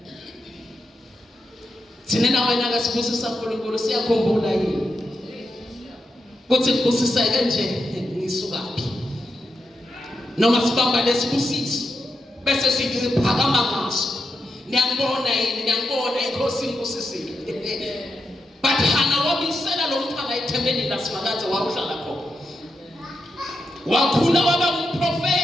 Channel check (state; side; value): normal; both; correlation 0.85